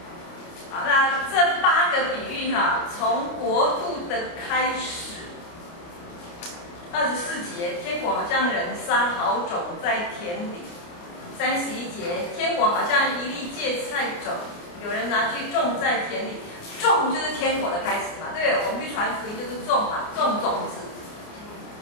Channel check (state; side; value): late; right; 29 ms